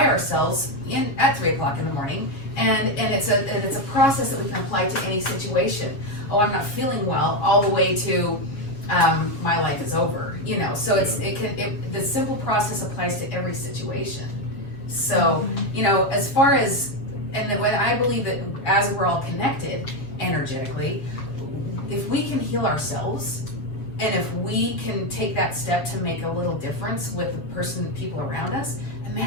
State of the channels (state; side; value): late; right; 7.3 ms